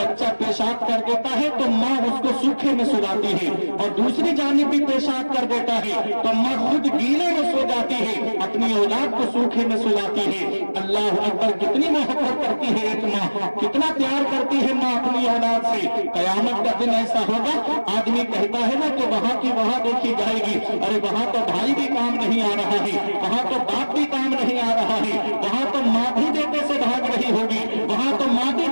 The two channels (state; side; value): inverted; both; correlation -1.00